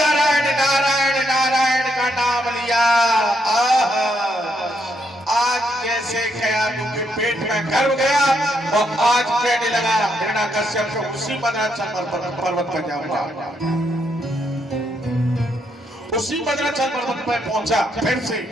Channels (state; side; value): normal; both; correlation 0.77